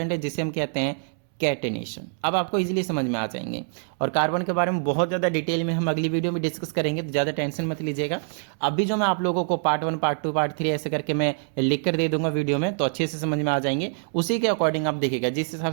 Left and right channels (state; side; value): silent; left; 62 dB below the other